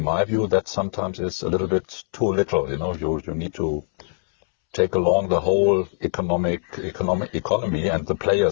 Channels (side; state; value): right; silent; 64 dB below the other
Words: my view, that sometimes is a little bit too little. You need to take along the whole economy and the